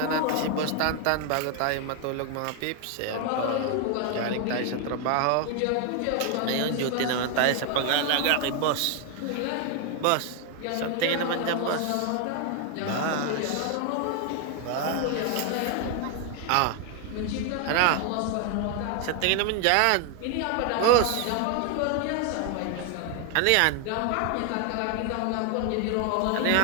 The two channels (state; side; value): different; both; correlation 0.01